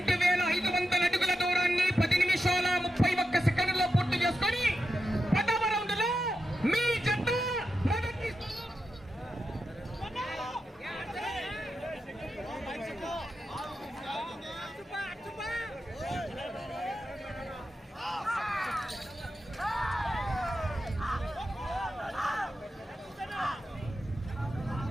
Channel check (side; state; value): both; normal; correlation 0.88